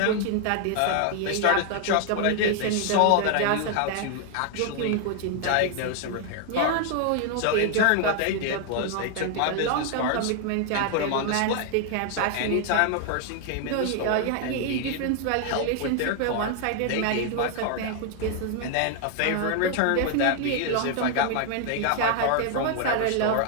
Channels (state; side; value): different; both; correlation 0.00